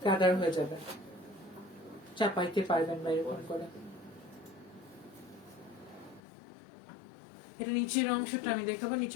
গ্যাদার হয়ে যাবে, চাপাইতে পারবেন বা এরকম করে। এটা নিচের অংশটা আমি দেখাবো,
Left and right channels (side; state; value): right; drops out; at 6.2 s